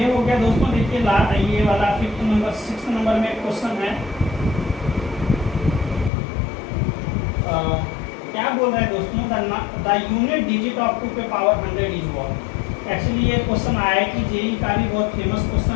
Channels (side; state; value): right; drops out; at 6.1 s